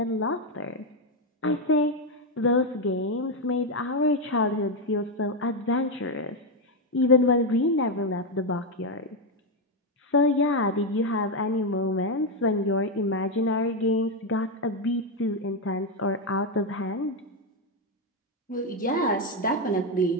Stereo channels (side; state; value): both; normal; correlation 0.06